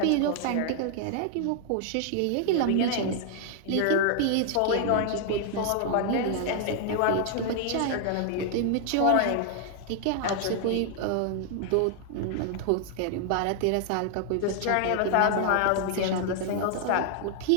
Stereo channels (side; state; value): both; different; correlation 0.00